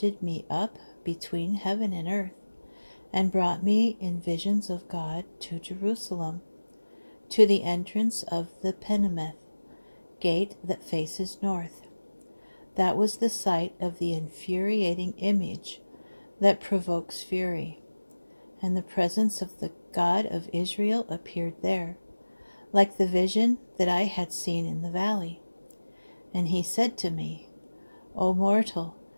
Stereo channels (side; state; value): both; inverted; correlation -1.00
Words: me up between heaven and earth, and brought me in visions of God to Jerusalem, to the entrance of the Penameth gate that faces north. That was the site of the infuriating image that provokes fury, and the presence of the God of Israel appeared there, like the vision that I had seen in the valley. And he said to me, O mortal,